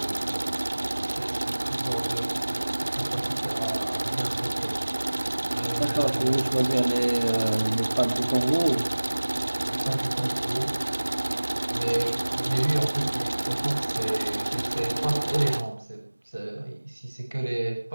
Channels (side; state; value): both; inverted; correlation -1.00